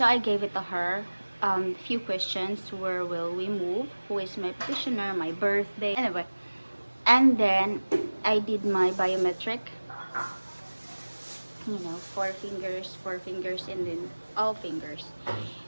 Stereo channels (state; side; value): inverted; both; correlation -1.00